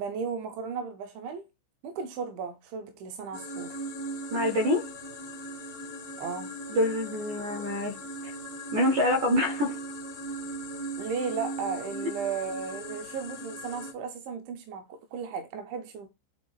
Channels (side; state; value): left; late; 14 ms